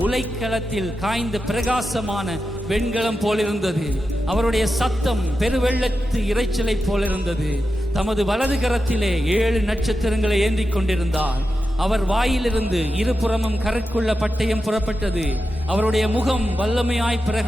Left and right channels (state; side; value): normal; both; correlation 0.90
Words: உலைக்களத்தில் காய்ந்த பிரகாசமான வெண்கலம் போலிருந்தது. அவருடைய சத்தம் பெருவெள்ளத்து இரைச்சலை போலிருந்தது. தமது வலது கரத்திலே 7 நட்சத்திரங்களை ஏந்தி கொண்டிருந்தார். அவர் வாயிலிருந்து இருபுறமும் கரைக்குள்ள பட்டயம் புறப்பட்டது. அவருடைய முகம் வல்லமையாய்